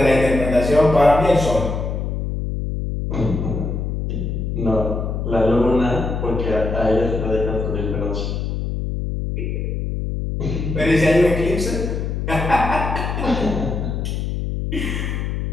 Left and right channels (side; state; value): left; noise; hum, 2 dB below the sound